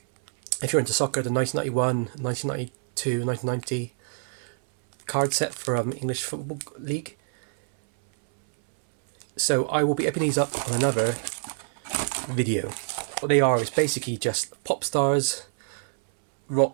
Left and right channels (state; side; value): silent; left; 61 dB below the other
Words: you're into soccer, the 1991, 1992, 1990 card set for English Football League. So I will be opening these up on another video. What they are is basically just pop stars,